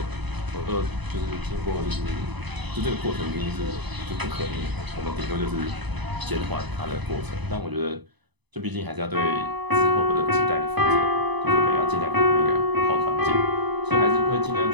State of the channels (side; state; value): left; late; 0.99 ms